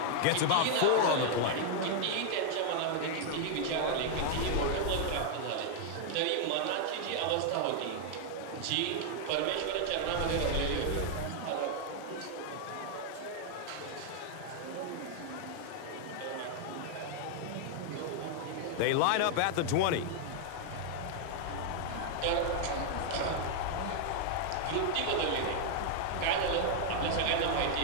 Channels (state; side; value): different; both; correlation 0.00